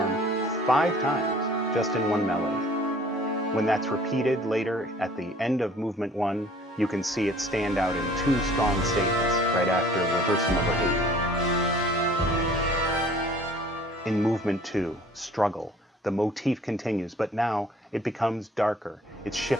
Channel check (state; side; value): normal; both; correlation 0.52